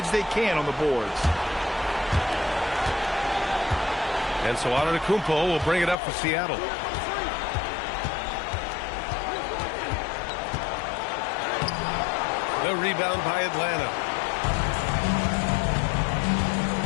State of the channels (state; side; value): drops out; right; at 6.0 s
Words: they can on the boards. And so Antetokounmpo will bring it up for Seattle. The rebound by Atlanta.